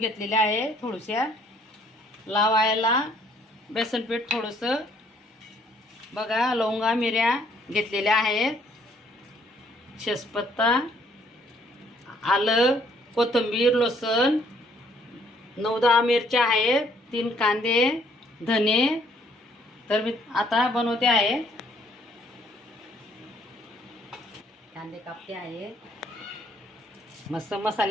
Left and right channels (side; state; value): both; normal; correlation 0.64